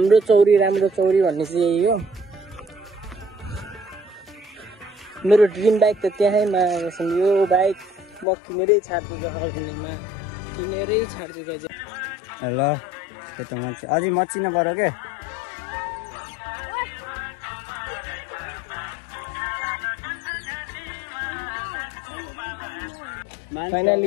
चौरी राम्रो चौरी भन्ने चाहिँ यही हो। मेरो ड्रिम बाइक त त्यहीँमा यो बाइक म किनेरै छाड्छु जहाँमा, किनेरै छाड्छु गाइज। ल त्यो त हुन्छ, अझै मचिन पऱ्यो क्या।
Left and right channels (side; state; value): right; drops out; at 8.2 s